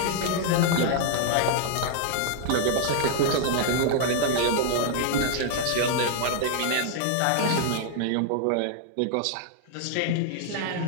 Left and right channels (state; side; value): different; both; correlation -0.01